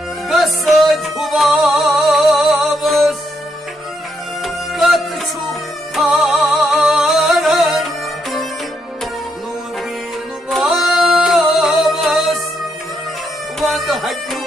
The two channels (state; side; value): normal; both; correlation 0.78